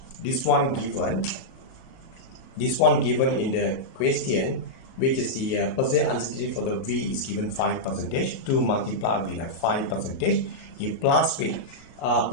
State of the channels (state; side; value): late; right; 37 ms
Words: this one given in the question, which is the percentage uncertainty for the V is given 5%, 2 multiplied with 5%, you plus with